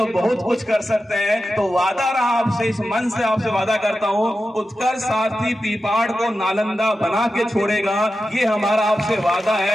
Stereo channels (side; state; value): both; normal; correlation 0.91